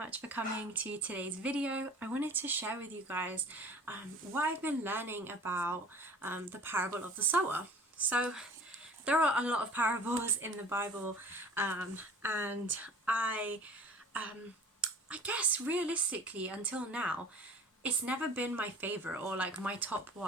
for coming to today's video. I wanted to share with you guys what I've been learning about the parable of the sower. So there are a lot of parables in the Bible, and I guess realistically until now it's never been my favorite or like my top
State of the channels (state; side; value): normal; both; correlation 0.44